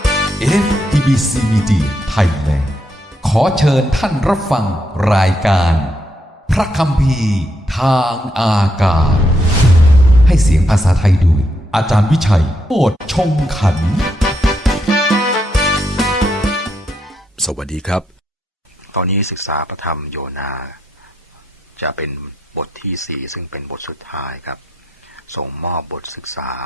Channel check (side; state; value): both; normal; correlation 0.79